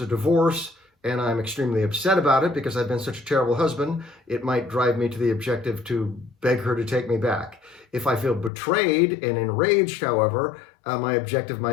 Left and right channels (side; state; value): right; drops out; at 8.5 s